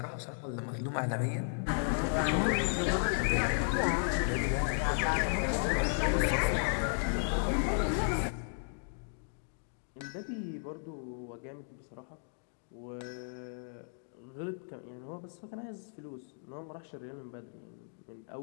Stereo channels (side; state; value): right; silent; digital silence